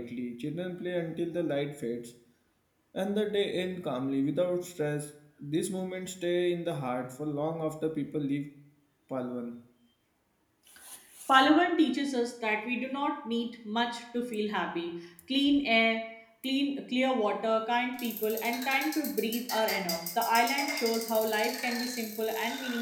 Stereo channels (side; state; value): both; identical; correlation 1.00